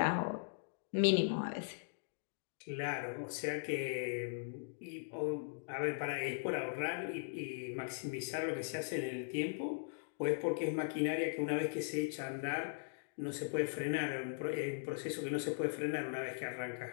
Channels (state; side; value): silent; right; digital silence